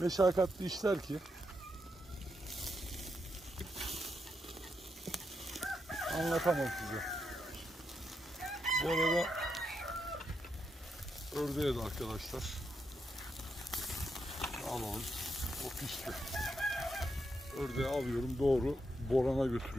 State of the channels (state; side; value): normal; both; correlation 0.82